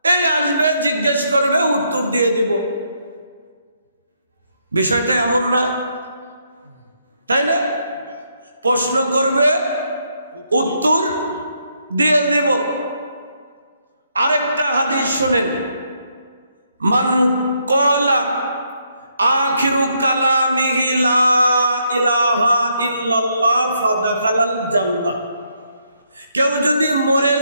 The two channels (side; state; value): both; inverted; correlation -0.75